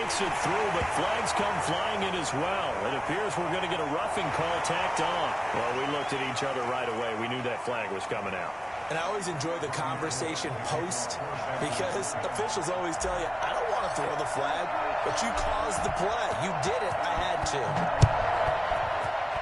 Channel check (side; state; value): both; identical; correlation 1.00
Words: it through, but flags come flying in as well. It appears we're going to get a roughing call tacked on. Well, we looked at each other right away. We knew that flag was coming out. And I always enjoy the conversation post because officials always tell you, I don't want to throw the flag, but you caused the play. You did it. I had